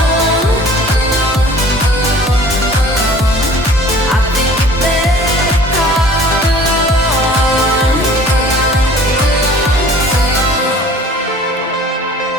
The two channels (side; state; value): both; normal; correlation 0.48